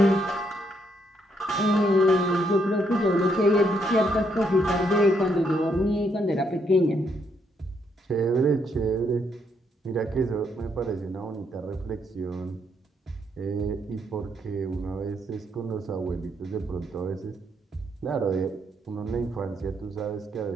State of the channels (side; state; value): both; normal; correlation 0.74